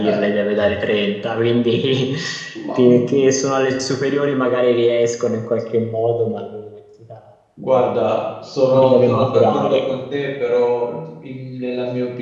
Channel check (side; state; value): both; identical; correlation 1.00